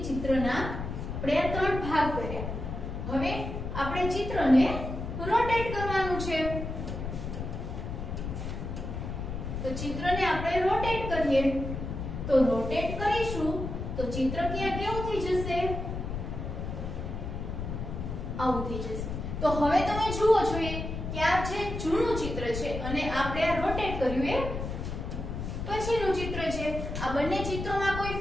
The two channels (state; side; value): noise; left; rumble, 5 dB below the sound